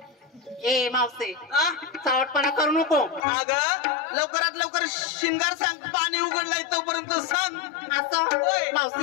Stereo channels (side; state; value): right; drops out; at 3.2 s